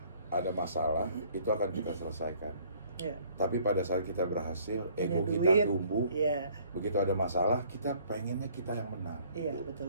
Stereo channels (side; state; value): both; inverted; correlation -0.59